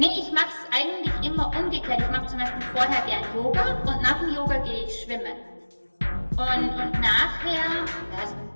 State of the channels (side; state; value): both; inverted; correlation -1.00